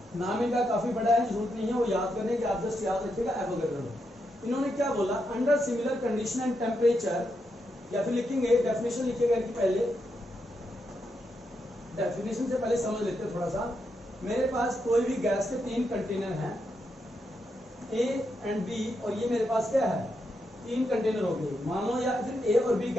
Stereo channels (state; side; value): normal; both; correlation 0.83